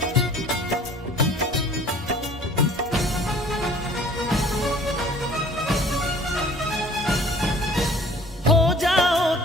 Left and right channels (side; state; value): both; normal; correlation 0.52